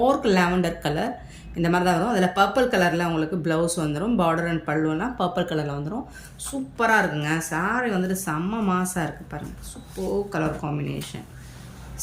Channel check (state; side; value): identical; both; correlation 1.00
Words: லாவெண்டர் கலர் இந்த மாதிரி தான் வரும். அதில் பர்பிள் கலரில் உங்களுக்கு ப்ளவுஸ் வந்துடும். பார்டர் அண்ட் பல்லுவெல்லாம் பர்பிள் கலரில் வந்துடும். சூப்பராக இருக்குங்க. சாரீ வந்துட்டு செம்ம மாசாக இருக்குது பாருங்கள். சூப்பர் கலர் காம்பினேஷன்,